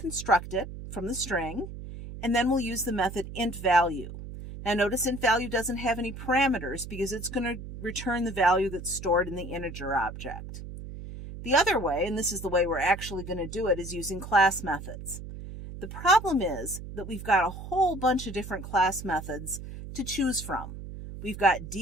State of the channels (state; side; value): noise; right; hum, 11 dB below the sound